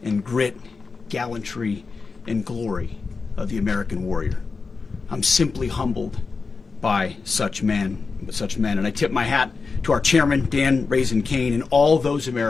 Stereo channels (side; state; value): right; quieter; 4.6 dB